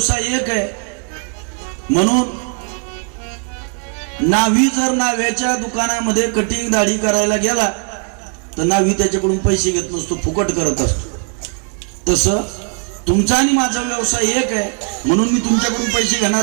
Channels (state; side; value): quieter; left; 39.2 dB